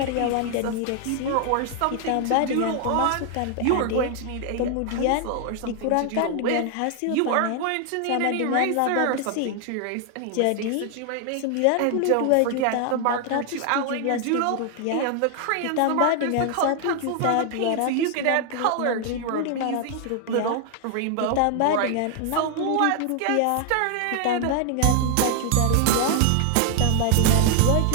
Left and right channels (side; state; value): both; different; correlation 0.00